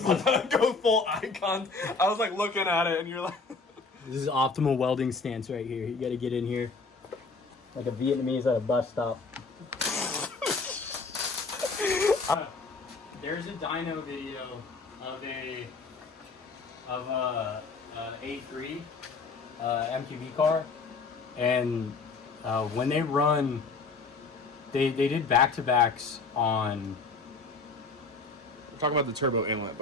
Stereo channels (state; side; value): quieter; right; 4.2 dB